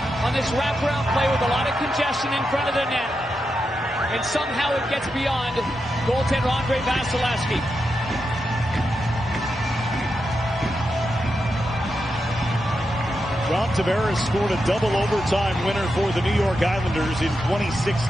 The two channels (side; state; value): both; normal; correlation 0.87